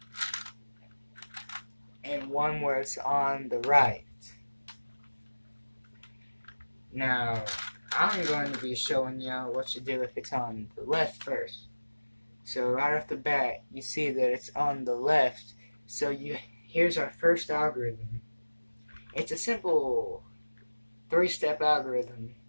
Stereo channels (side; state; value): both; inverted; correlation -1.00